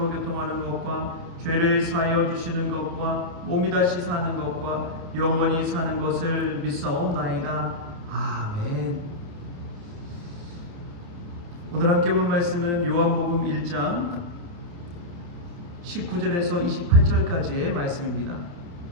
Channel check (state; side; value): late; left; 29 ms